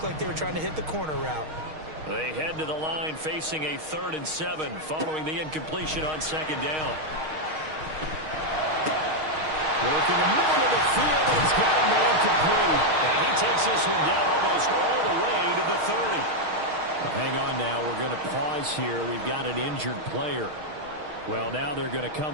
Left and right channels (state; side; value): late; left; 6.4 ms